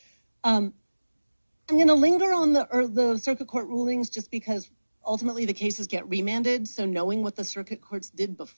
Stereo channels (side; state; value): both; inverted; correlation -1.00